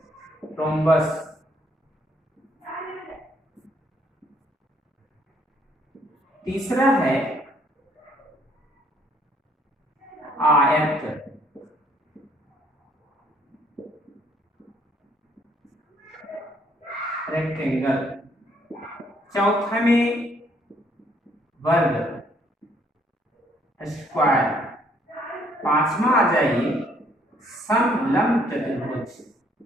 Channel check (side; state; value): both; normal; correlation 0.66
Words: रोम्बस। तीसरा है आयत। रेक्टेंगल। चौथा में वर्ग, स्क्वायर। पांचवा आ जाइए समलंब चतुर्भुज।